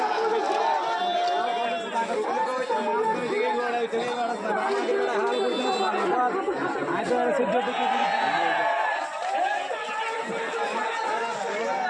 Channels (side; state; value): both; identical; correlation 1.00